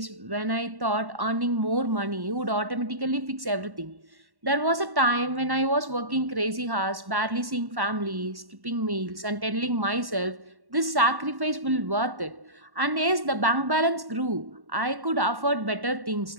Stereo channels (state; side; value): late; left; 1.1 ms